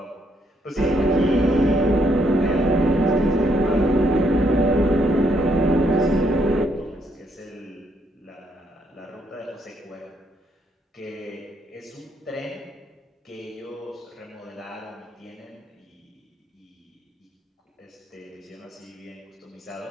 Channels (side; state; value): both; normal; correlation 0.73